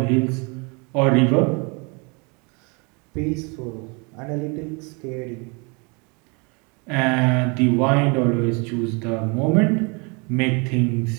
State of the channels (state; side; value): quieter; left; 31.5 dB